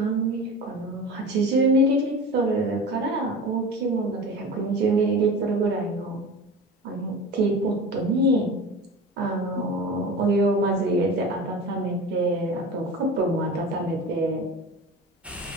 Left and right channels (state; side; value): normal; both; correlation 0.33